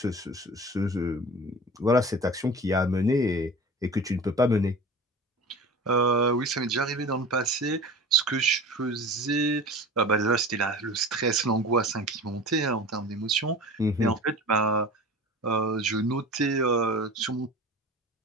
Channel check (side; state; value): both; normal; correlation 0.35